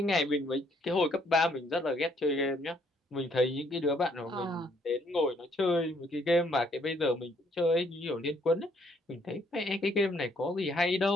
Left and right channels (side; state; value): both; normal; correlation 0.67